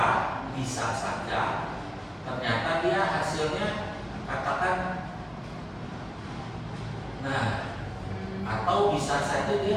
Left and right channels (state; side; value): identical; both; correlation 1.00